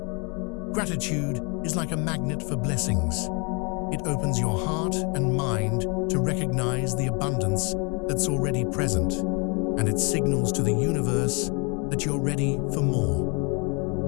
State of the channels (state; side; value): quieter; right; 32.8 dB